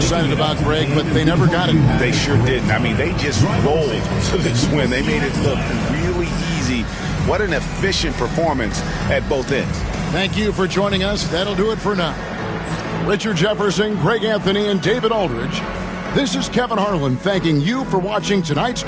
about, Greg, but they never got it. They sure didn't. I mean, they just rolled to this win. They made it look really easy. What an efficient performance at both ends. Thank you for joining us. That'll do it for now. Richard Jefferson, Greg Anthony, and David Aldridge. This is Kevin Harlan thanking you for watching tonight's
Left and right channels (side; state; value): both; identical; correlation 1.00